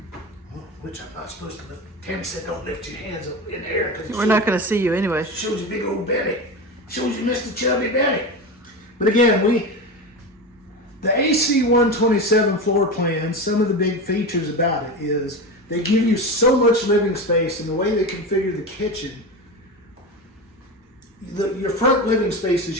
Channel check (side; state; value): both; normal; correlation 0.23